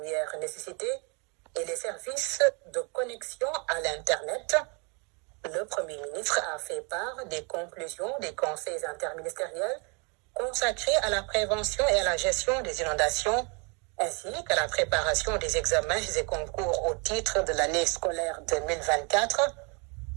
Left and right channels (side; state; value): left; quieter; 33.3 dB